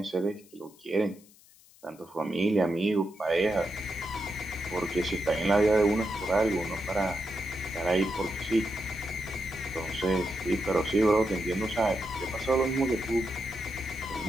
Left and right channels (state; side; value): noise; left; hiss, 26 dB below the sound